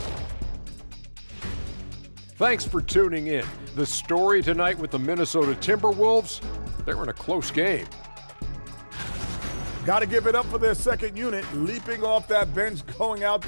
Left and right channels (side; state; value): both; inverted; correlation -1.00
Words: Thanks for tuning in. The story tonight with the Minnesota Timberwolves, they're in a close game. Got to give it up for their second unit, leaping off that bench, going out